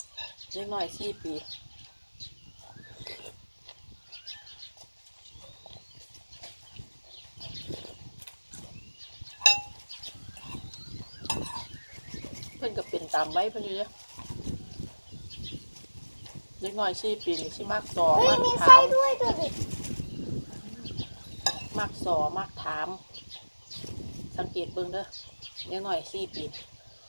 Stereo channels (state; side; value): inverted; both; correlation -1.00